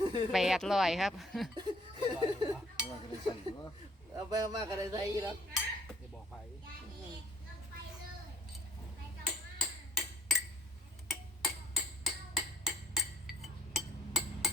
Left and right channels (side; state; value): both; normal; correlation 0.60